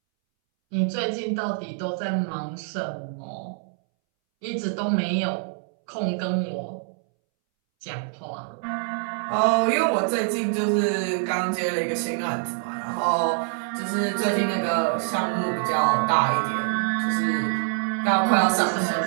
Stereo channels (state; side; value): silent; left; 62 dB below the other